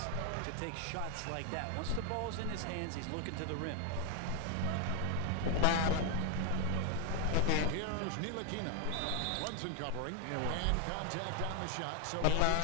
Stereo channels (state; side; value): different; both; correlation 0.00